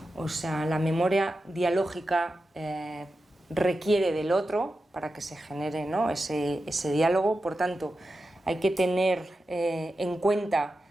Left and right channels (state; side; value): normal; both; correlation 0.91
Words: O sea, la memoria dialógica requiere del otro para que se genere, ¿no? ese diálogo. Por tanto, hay que tener en cuenta